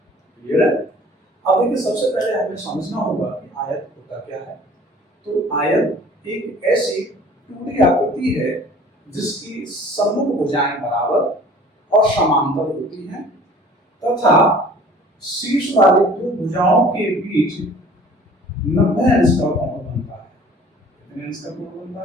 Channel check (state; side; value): normal; both; correlation 0.49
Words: क्लियर है? अब देखिए, सबसे पहले हमें समझना होगा कि आयत होता क्या है। तो आयत एक ऐसी 2D आकृति है जिसकी सम्मुख भुजाएं बराबर और समांतर होती हैं तथा शीर्ष वाले दो भुजाओं के बीच 90 अंश का कोण बनता है। कितने अंश का कोण